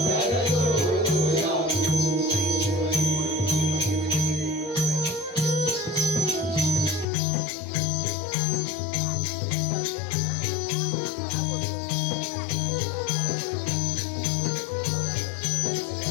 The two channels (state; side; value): drops out; right; at 7.1 s